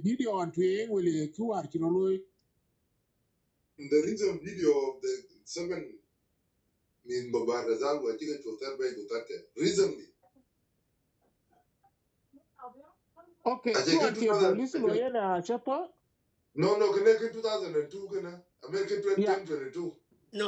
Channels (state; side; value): identical; both; correlation 1.00